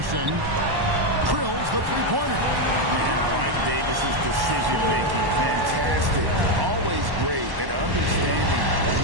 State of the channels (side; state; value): left; late; 1.1 ms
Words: Drills the three-pointer. And I like Davis's decision-making. Fantastic. Always great at understanding